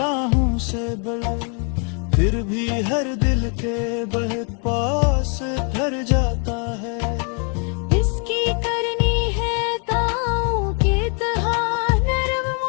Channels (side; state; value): right; quieter; 38.8 dB